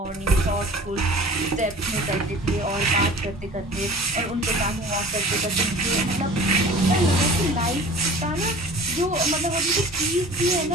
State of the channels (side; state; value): both; normal; correlation 0.43